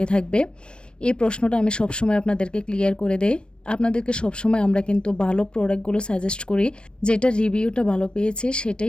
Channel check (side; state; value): right; late; 0.055 ms